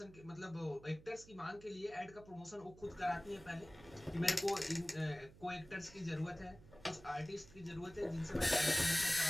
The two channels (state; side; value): noise; right; hum, 21 dB below the sound